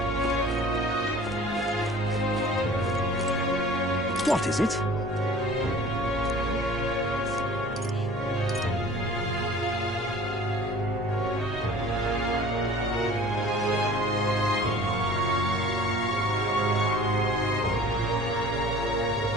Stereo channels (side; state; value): both; normal; correlation 0.46